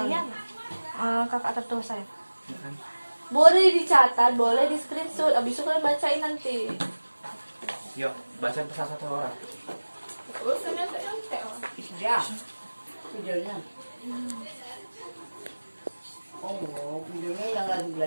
Kakak tertua saya. Boleh dicatat, boleh di screenshot. Abis itu kalian bacain nanti. Yuk, bacain pesan satu orang. Urusannya nyontek. Ya, videonya. Oh, videonya yang lagi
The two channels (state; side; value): inverted; both; correlation -1.00